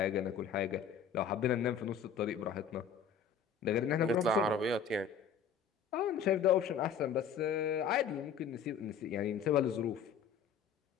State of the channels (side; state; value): right; quieter; 6.7 dB